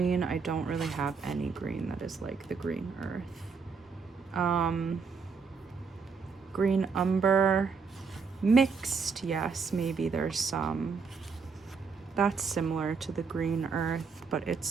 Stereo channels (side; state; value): left; quieter; 5.3 dB